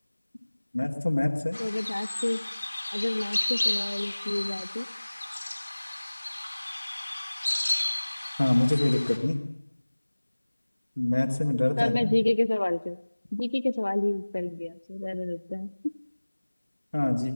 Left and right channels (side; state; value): both; inverted; correlation -1.00